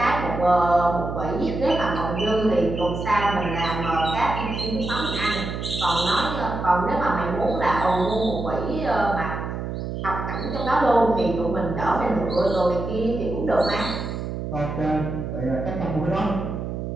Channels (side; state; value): right; noise; hum, 5 dB below the sound